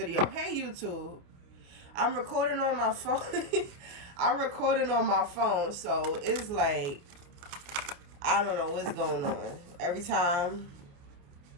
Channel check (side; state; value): left; late; 29 ms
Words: Hey, YouTube. I'm recording on my phone. I'm recording on my phone, so it's like, I don't know what's going on. Every time,